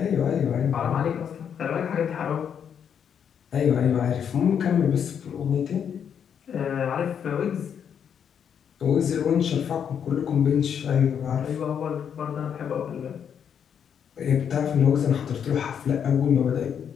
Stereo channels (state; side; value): quieter; right; 8.0 dB